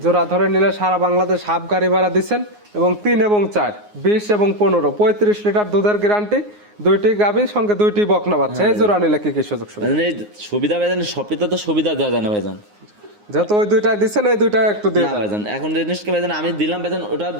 জোড়া ধরে নিলে সারা বাংলাদেশ হাফ গাড়ি ভাড়া দিচ্ছেন এবং 3 এবং 4 20 এবং 15 35 লিটার দুধের গ্যারান্টি, 2টি গাভীর সঙ্গে 2টি বকনা বাচ্চা। এই জোড়া নিলে কি কি সুযোগ সুবিধা? ভাইজান এই সুবিধা ভাইজান সবটিতে তো সুবিধা দেওয়া যায় না ভাইজান। যেহেতু ওই 2টা দিচ্ছেন, এই 2টা একটু দিয়ে না দেন। ভাইজান, এখন জিনিসকে ভাইজান আমি দিলাম ভাইজান, ওটা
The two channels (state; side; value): late; left; 9.6 ms